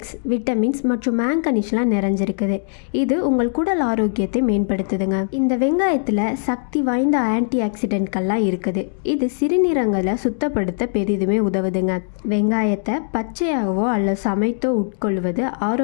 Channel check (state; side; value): silent; right; digital silence